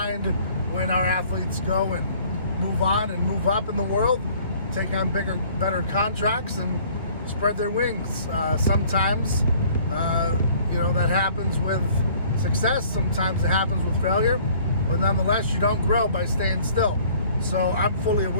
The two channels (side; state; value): both; inverted; correlation -0.55